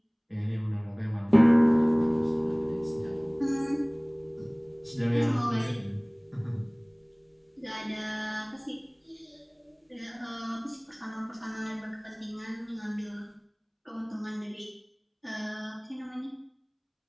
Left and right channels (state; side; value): identical; both; correlation 1.00